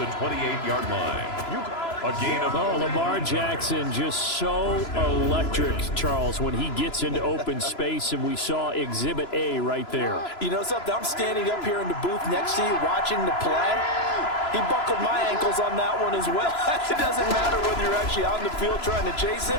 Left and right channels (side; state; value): right; late; 3.0 ms